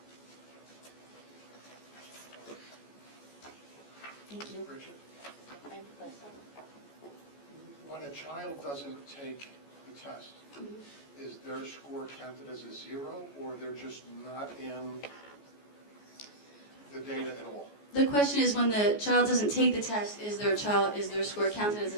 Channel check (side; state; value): right; late; 14 ms